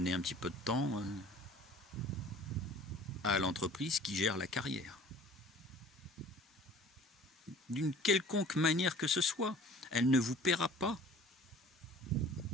un petit peu de temps à l'entreprise qui gère la carrière. D'une quelconque manière que ce soit, elle ne vous paiera pas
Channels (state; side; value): normal; both; correlation 0.47